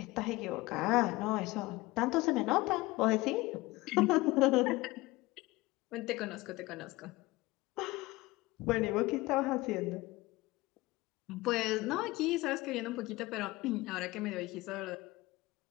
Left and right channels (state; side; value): quieter; right; 20.4 dB